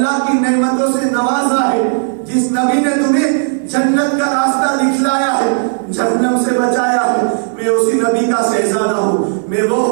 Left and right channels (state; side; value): silent; left; digital silence